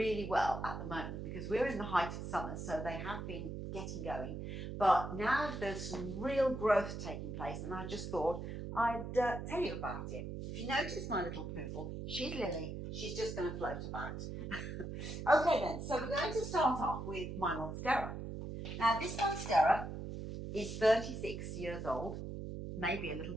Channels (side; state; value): right; noise; hum, 6 dB below the sound